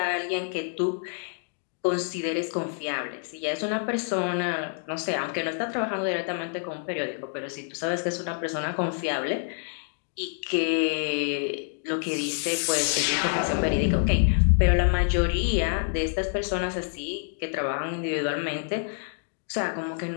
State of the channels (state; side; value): silent; right; 60 dB below the other